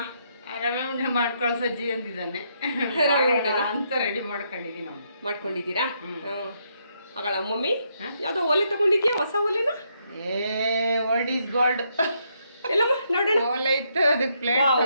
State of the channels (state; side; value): inverted; both; correlation -0.76